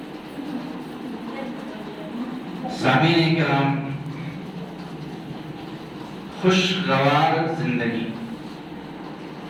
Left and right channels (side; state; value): both; identical; correlation 1.00